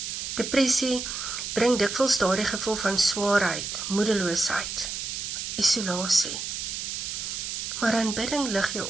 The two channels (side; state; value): right; noise; hiss, 5 dB below the sound